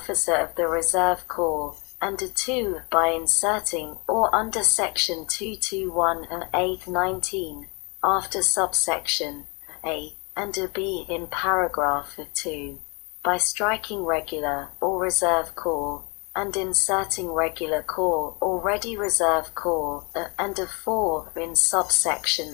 of the Reserve Corps, and 2. By inserting or under section 221(a)(19) after subsection A and B in paragraph 2. By striking regular or reserve corps and inserting regular corps or ready reserve corps and 4 in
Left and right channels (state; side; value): quieter; right; 31.3 dB